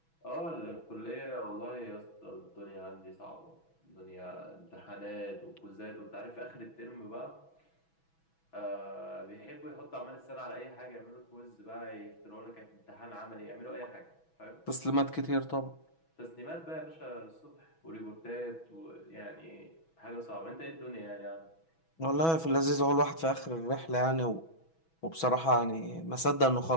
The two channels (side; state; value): right; late; 6.1 ms